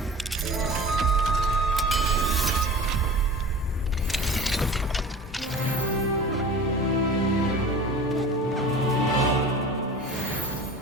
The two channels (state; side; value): normal; both; correlation 0.38